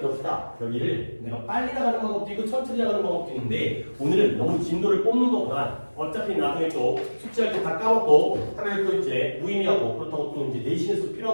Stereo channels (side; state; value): both; inverted; correlation -1.00